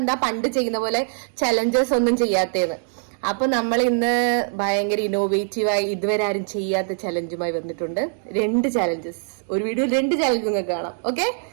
പണ്ട് ചെയ്യുന്ന പോലെ ചലഞ്ചസ് ഒന്നും ചെയ്യാത്തേന്ന്. അപ്പൊ നമ്മൾ ഇന്ന് ഭയങ്കര ഇന്നോവേറ്റീവായി ഇതുവരെ ആരും ചെയ്യാത്ത ചലഞ്ചുമായി വന്നിട്ടുണ്ട്. 2 ചലഞ്ചസ്, ഒരു വീഡിയോ 2 ചലഞ്ച് നിങ്ങൾക്ക് കാണാം. ഓക്കെ,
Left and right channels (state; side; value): silent; left; digital silence